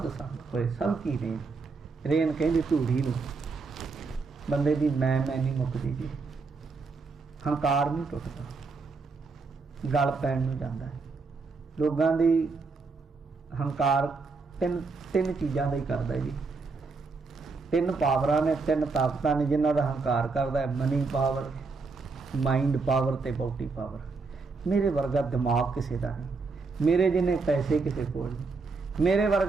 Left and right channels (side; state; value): left; quieter; 4.3 dB